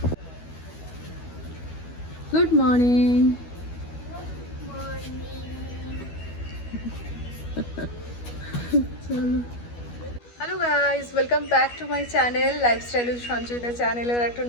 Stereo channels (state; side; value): late; right; 12 ms